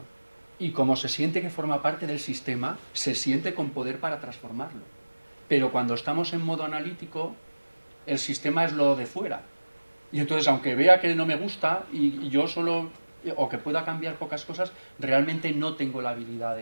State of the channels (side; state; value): both; inverted; correlation -1.00